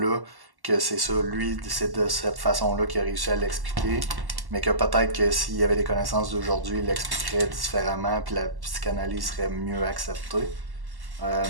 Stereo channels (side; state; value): left; late; 1.1 ms